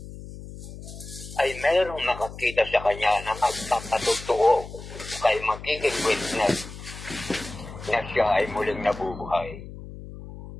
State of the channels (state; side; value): noise; left; hum, 13 dB below the sound